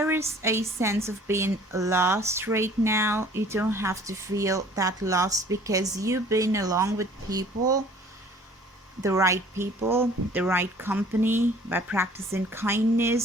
is a sense of being lost right now, you don't have to feel that lost, because you've been along with people, the right people, the right company, by practicing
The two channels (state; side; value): normal; both; correlation 0.52